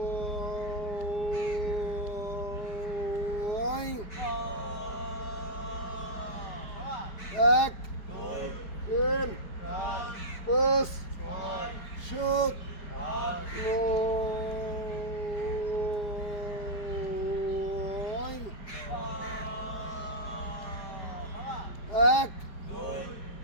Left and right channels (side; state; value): right; late; 4.8 ms